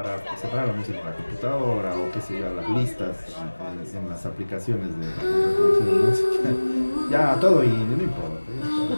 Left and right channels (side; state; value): both; inverted; correlation -1.00